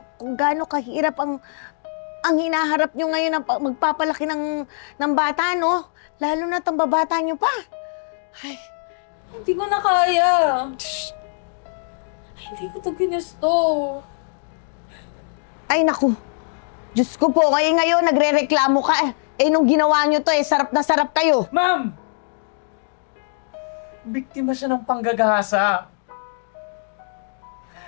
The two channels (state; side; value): silent; right; digital silence